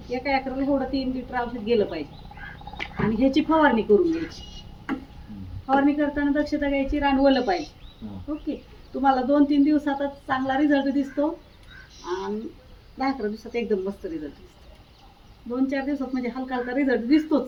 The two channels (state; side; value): identical; both; correlation 1.00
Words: एका एकराला एवढं 3 लिटर औषध गेलं पाहिजे. आणि ह्याची फवारणी करून घ्यायची. फवारणी करताना दक्षता घ्यायची, रान ओलं पाहिजे. ओके, तुम्हाला 2-3 दिवसातच चांगला रिझल्ट दिसतो आणि 10-11 दिवसात एकदम मस्त रिझल्ट दिसतो. 2-4 दिवसात म्हणजे हलका हलका रिझल्ट दिसतोच.